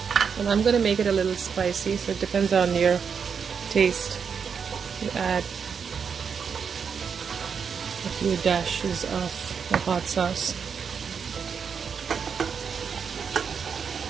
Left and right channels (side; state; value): left; quieter; 6.5 dB